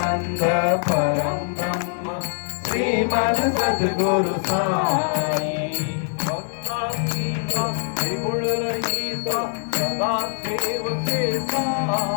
परम ब्रह्म श्रीमन सद्गुरु साई त्रिगुण रहित सदा देव के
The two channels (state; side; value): silent; right; 63 dB below the other